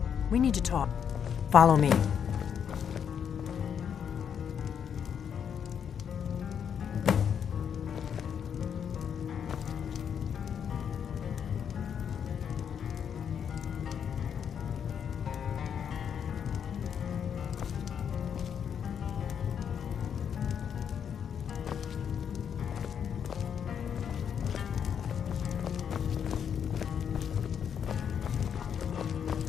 We need to talk. Follow me.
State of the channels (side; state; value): right; quieter; 7.9 dB